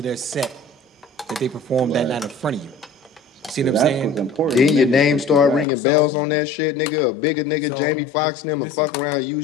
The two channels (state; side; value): drops out; right; at 5.7 s